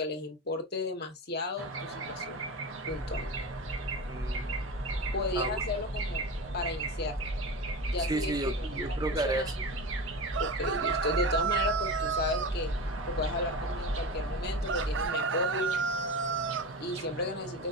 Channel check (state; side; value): normal; both; correlation 0.26